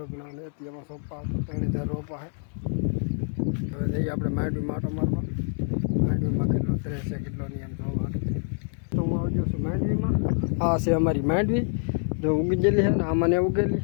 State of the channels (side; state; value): right; silent; 58 dB below the other